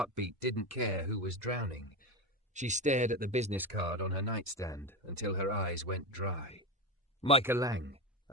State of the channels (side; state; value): both; normal; correlation 0.18